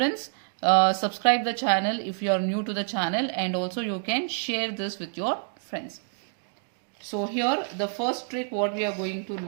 subscribe the channel if you are new to the channel, and also you can share this with your friends. So here the first trick what we are going to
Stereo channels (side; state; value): left; silent; digital silence